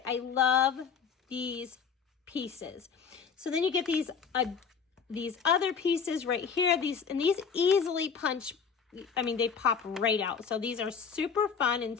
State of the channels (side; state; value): right; quieter; 6.4 dB